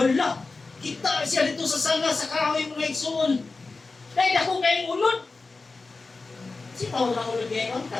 Kita siya dito sa sanga sa kahoy mga igsoon. Dahil ako kayong ulod. Sitaw na ulod ngayon,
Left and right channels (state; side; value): quieter; right; 3.8 dB